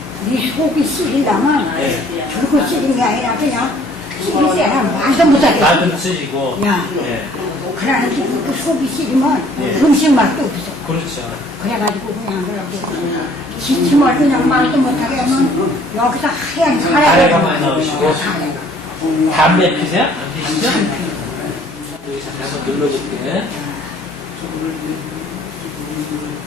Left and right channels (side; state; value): both; normal; correlation 0.57